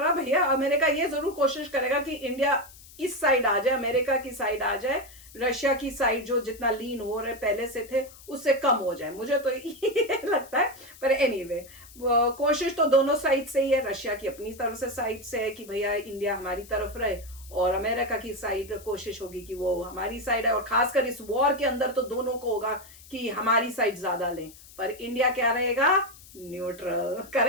भैया। अमेरिका ये जरूर कोशिश करेगा कि इंडिया इस साइड आ जाए, अमेरिका की साइड आ जाए, रशिया की साइड जो जितना लीन हो रहे पहले से थे उससे कम हो जाए, मुझे तो ये लगता है। पर एनीवे कोशिश तो दोनों साइड से ही है। रशिया की अपनी तरफ से साइड से है कि भैया इंडिया हमारी तरफ रहे, और अमेरिका की साइड कोशिश होगी कि वो हमारी साइड है। और खासकर इस वॉर के अंदर तो दोनों को होगा कि हमारी साइड ज्यादा लें, पर इंडिया क्या रहेगा? न्यूट्रल।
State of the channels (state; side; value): noise; left; hiss, 21 dB below the sound